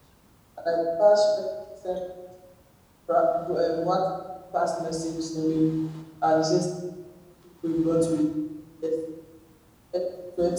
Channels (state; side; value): identical; both; correlation 1.00